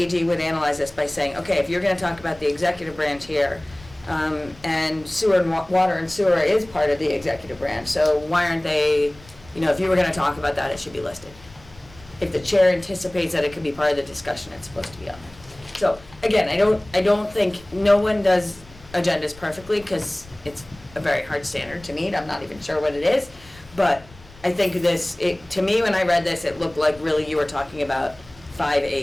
would analyze this by saying, okay, if you're gonna talk about the executive branch here, and sewer and water and sewer is part of the executive branch, so why aren't they, if you were gonna talk about that, it should be listed. If the chair anticipates that it could be part of the discussion, it's supposed to be on there. So, again, I don't think, no one does agendas perfectly, because it's a very hard standard to meet, I'm not even sure what it is, but I think to me, when I read this, it looked like really you were talking about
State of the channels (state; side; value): noise; left; rumble, 22 dB below the sound